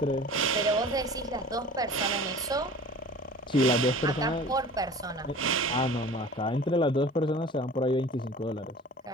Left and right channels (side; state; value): both; normal; correlation 0.42